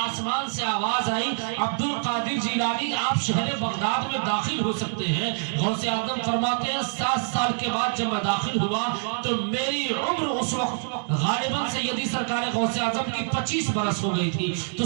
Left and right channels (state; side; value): silent; left; digital silence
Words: آسمان سے آواز آئی عبد القادر جیلانی آپ شہر بغداد میں داخل ہو سکتے ہیں۔ غوث اعظم فرماتے ہیں 7 سال کے بعد جب میں داخل ہوا تو میری عمر اس وقت غالباً سیدی سرکار غوث اعظم کی 25 برس ہو گئی تھی، تو